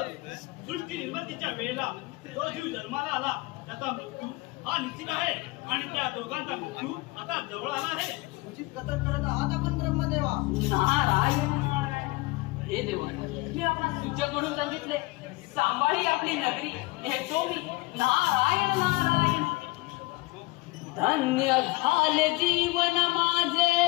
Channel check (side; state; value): right; quieter; 23.0 dB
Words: सृष्टी निर्मितीच्या वेळेला जो जीव जन्माला आला त्याचा मृत्यू हा निश्चित आहे आणि त्या दोघांचा मृत्यू आता जवळ आला आहे. उचित कथन करत आहात आपण ब्रह्मदेवा. नारायण नारायण हे देवा मी आपला सूचक म्हणून सांगितले. सांभाळी आपली नगरी हे तो मी नारायण नारायण. धन्य झाले जीवन माझे